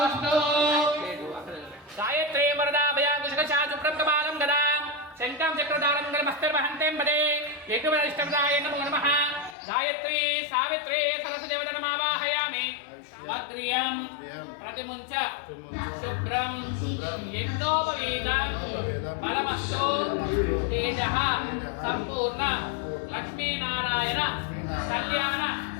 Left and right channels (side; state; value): right; drops out; at 9.6 s